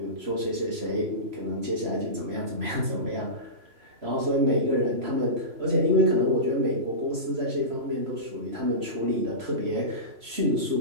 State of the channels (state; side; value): late; left; 3.0 ms